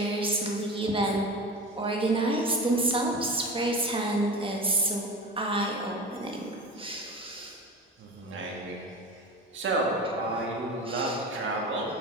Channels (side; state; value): both; normal; correlation 0.31